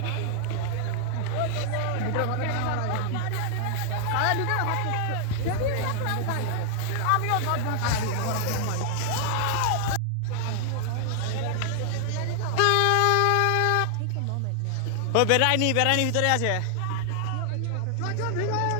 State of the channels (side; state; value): both; different; correlation 0.00